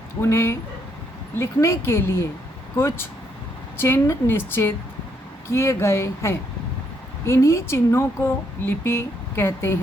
उन्हें लिखने के लिए कुछ चिन्ह निश्चित किए गए हैं। इन्हीं चिन्हों को लिपि कहते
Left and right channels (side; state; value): both; normal; correlation 0.74